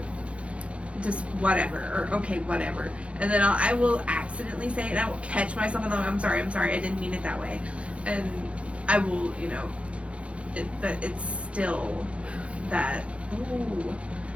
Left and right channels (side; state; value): left; late; 0.061 ms